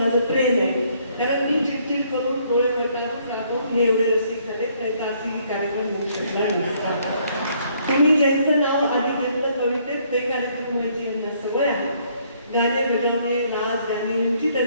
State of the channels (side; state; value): both; inverted; correlation -0.66